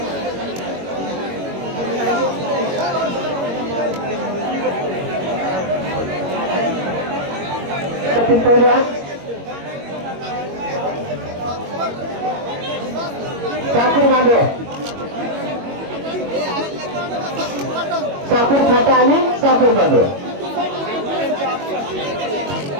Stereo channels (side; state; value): left; late; 21 ms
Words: साखर मांडव, साखर फाटा आणि साखर मांडव.